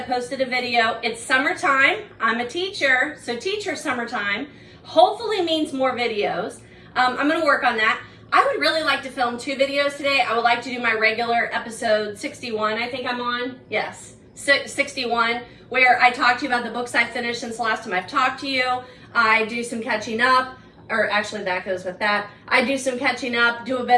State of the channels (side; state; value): both; identical; correlation 1.00